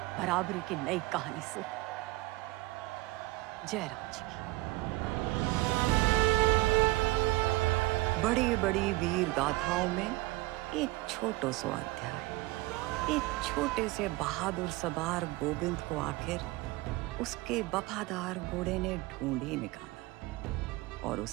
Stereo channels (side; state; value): left; quieter; 20.5 dB